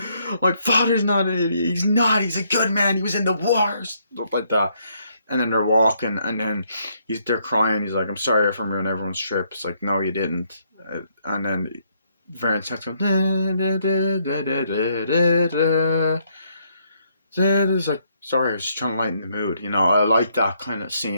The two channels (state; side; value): inverted; both; correlation -0.72